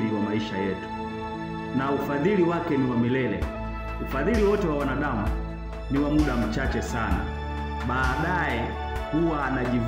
wa maisha yetu, na ufadhili wake ni wa milele. Ufadhili wote wa wanadamu ni wa muda mchache sana. Baadaye huwa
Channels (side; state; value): both; identical; correlation 1.00